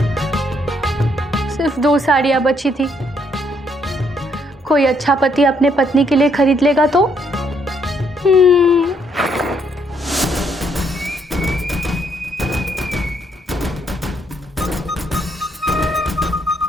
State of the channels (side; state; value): both; normal; correlation 0.72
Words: सिर्फ 2 साड़ियां बची थी, कोई अच्छा पति अपने पत्नी के लिए खरीद लेगा तो।